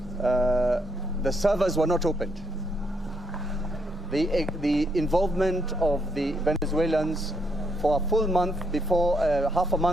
the servers were not opened. The involvement of the Venezuelans for a full month before, half a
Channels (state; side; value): normal; both; correlation 0.75